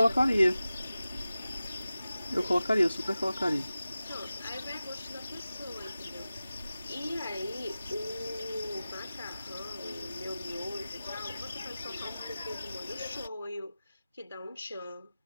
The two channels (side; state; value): both; inverted; correlation -0.95